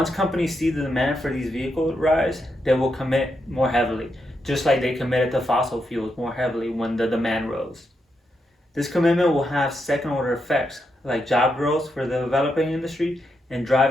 companies see the demand for these vehicles rise, they will commit more heavily, just like they committed to fossil fuels more heavily when the demand rose. This commitment will have second-order effects, like job growth for the developing industry and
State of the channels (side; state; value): both; normal; correlation 0.83